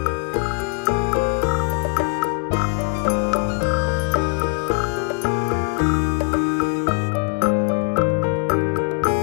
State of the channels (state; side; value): quieter; right; 35.1 dB